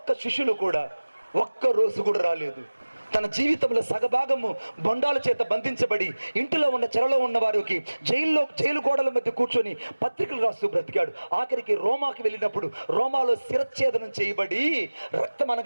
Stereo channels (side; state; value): both; inverted; correlation -1.00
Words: శిష్యులు కూడా ఒక్క రోజు కూడా రాలేదు. తన జీవితంలో సగభాగము బొండాల చేత బంధించబడి ఇంటిలో ఉన్న చెరలో ఉన్న వారికి జైలు గోడల మధ్య కూర్చొని పత్రికలు రాస్తూ బ్రతికాడు. ఆఖరికి రోమాకి వెళ్ళినప్పుడు రోమాలో శిరచ్ఛేదనం చేయబడి రక్తం